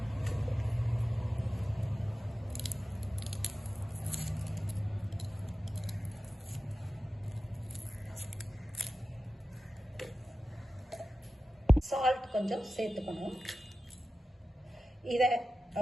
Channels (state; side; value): normal; both; correlation 0.94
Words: சால்ட் கொஞ்சம் சேர்த்துக்கணும். இதை